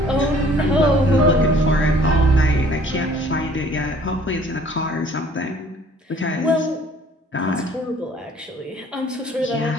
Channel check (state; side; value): normal; both; correlation 0.56